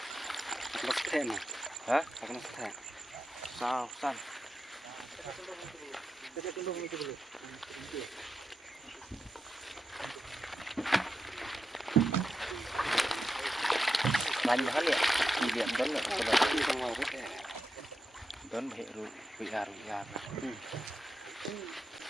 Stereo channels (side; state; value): both; normal; correlation 0.89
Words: Lestena. Hah? Akan lestena. Sausan. banyak hal ya kemudian don ya seperti yang mau don heru biar ini